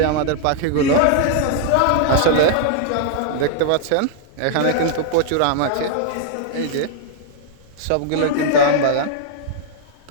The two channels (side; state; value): both; different; correlation -0.01